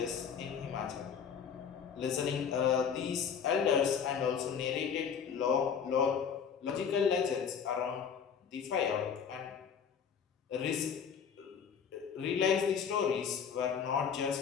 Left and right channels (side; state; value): right; quieter; 7.1 dB